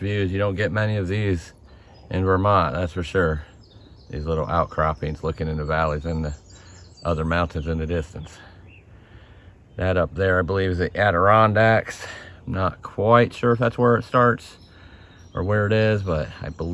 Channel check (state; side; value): identical; both; correlation 1.00